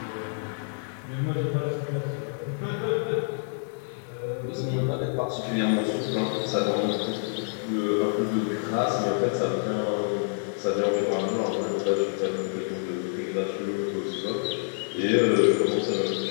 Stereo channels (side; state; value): right; silent; digital silence